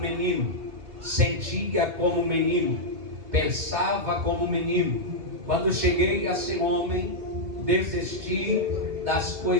sentia como menino, pensava como menino. Quando cheguei a ser homem, desisti das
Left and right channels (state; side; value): late; left; 2.7 ms